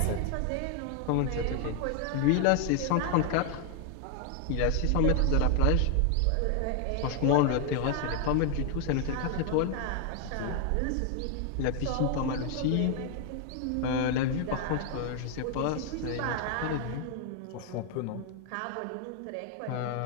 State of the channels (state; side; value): different; both; correlation 0.00